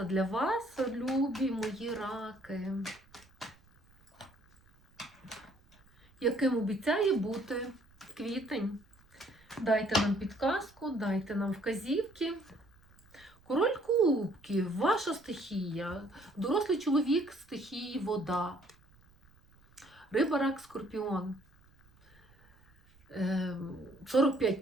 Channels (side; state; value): right; noise; rumble, 29 dB below the sound